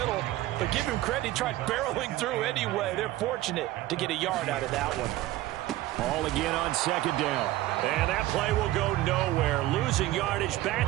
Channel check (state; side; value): quieter; left; 16.0 dB